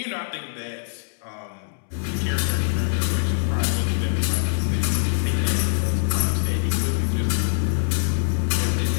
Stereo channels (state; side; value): silent; right; 63 dB below the other